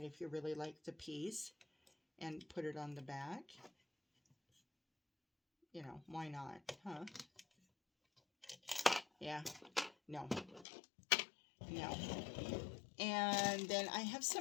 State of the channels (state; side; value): drops out; right; at 10.7 s